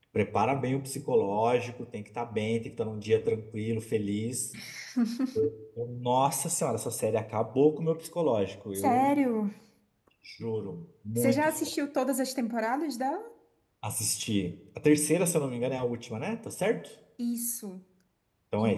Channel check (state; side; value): identical; both; correlation 1.00